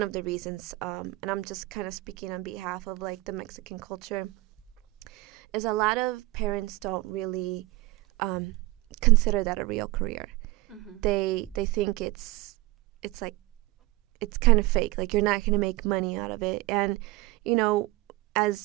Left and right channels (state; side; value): quieter; left; 20.5 dB